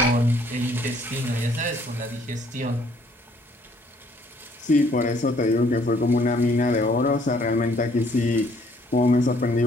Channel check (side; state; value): both; normal; correlation 0.63